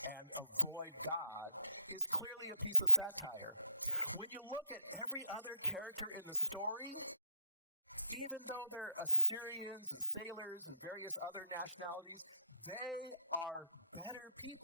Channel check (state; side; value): inverted; both; correlation -0.79